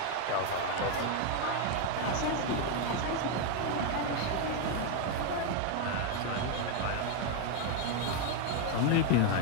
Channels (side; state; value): both; different; correlation 0.01